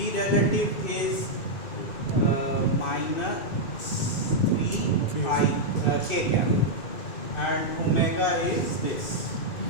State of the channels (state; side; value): late; right; 2.3 ms